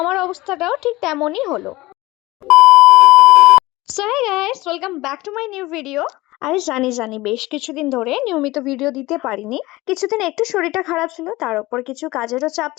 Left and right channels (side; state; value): right; quieter; 19.6 dB